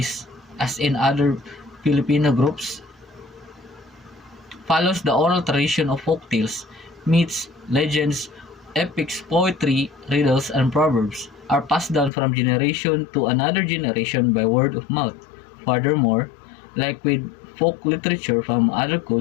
as in other Filipino groups, follows the oral tradition of folk tales, myths, legends, epics, poetry, riddles, and proverbs are passed down from generation to another generation by word of mouth. Furthermore, like with folk literature from other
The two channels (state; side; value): drops out; right; at 12.1 s